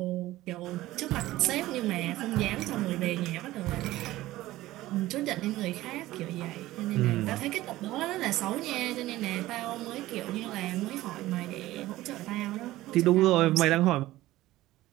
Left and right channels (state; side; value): quieter; left; 16.5 dB